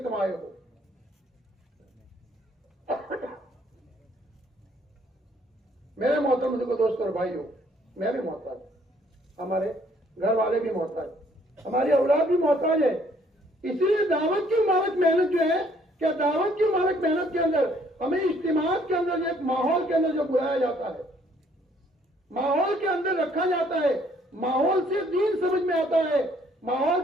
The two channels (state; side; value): normal; both; correlation 0.64